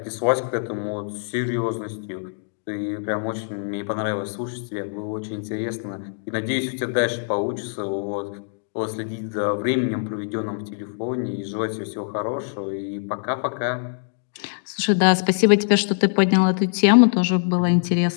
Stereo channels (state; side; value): silent; right; digital silence